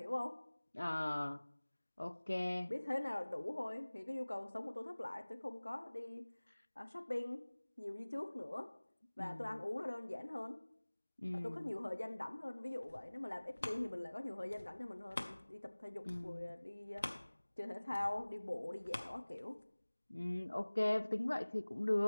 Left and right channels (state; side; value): inverted; both; correlation -1.00